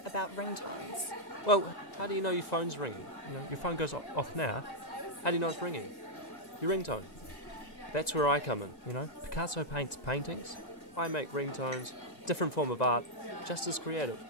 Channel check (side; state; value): right; late; 1.9 ms